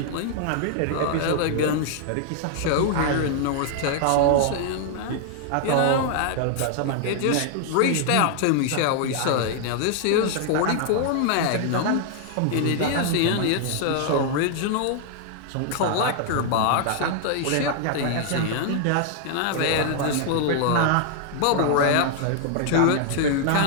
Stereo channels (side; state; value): both; different; correlation 0.00